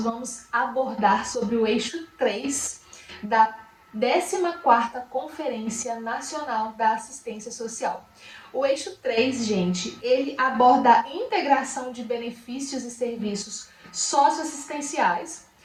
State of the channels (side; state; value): both; identical; correlation 1.00